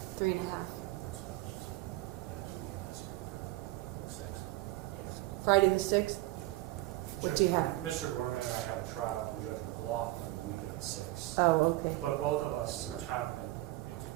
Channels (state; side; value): quieter; left; 18.2 dB